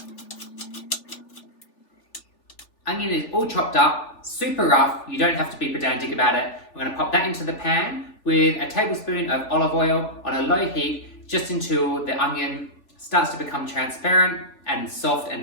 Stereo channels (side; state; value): right; late; 3.4 ms